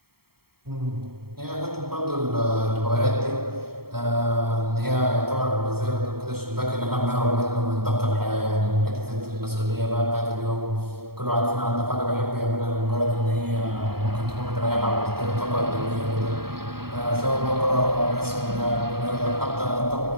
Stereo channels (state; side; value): late; left; 0.95 ms